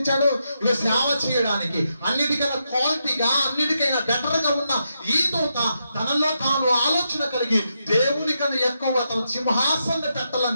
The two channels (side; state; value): both; inverted; correlation -0.83